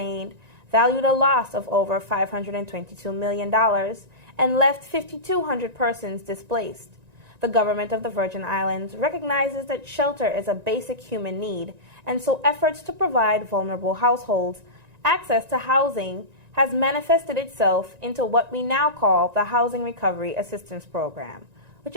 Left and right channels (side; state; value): left; late; 1.9 ms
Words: valued a loss of over $522 million and left 5,200 persons displaced. The government of the Virgin Islands recognizes that shelter is a basic human need, and so efforts to provide vulnerable households access to housing has manifested itself into what we now call the Housing Recovery Assistance Program, which